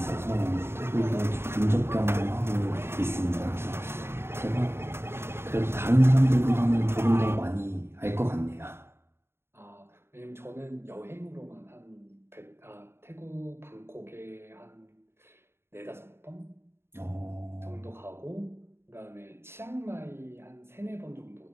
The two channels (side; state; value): left; late; 0.12 ms